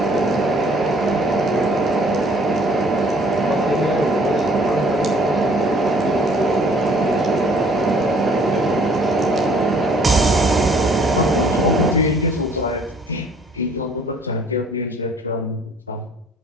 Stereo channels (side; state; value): both; normal; correlation 0.58